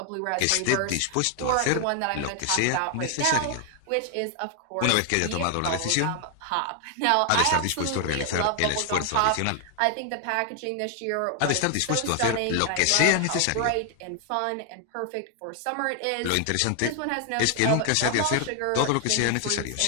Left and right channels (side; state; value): both; different; correlation 0.00